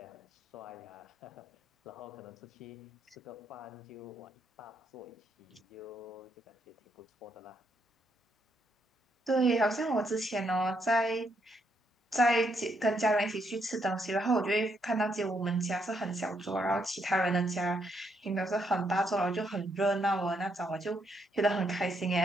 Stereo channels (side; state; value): both; normal; correlation 0.76